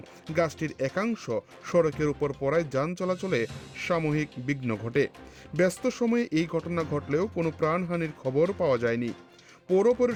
গাছটির একাংশ সড়কের উপর পড়ায় যান চলাচলে সাময়িক বিঘ্ন ঘটে। ব্যস্ত সময়ে এই ঘটনা ঘটলেও কোনো প্রাণহানির খবর পাওয়া যায়নি। পৌর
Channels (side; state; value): both; identical; correlation 1.00